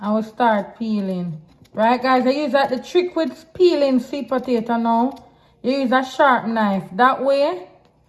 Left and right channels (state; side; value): identical; both; correlation 1.00